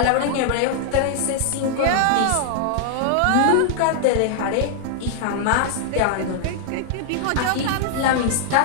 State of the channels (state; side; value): different; both; correlation -0.01